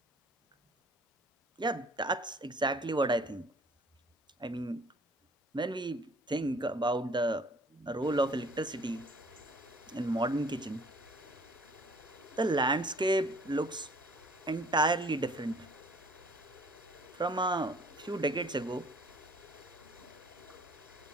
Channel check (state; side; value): normal; both; correlation 0.55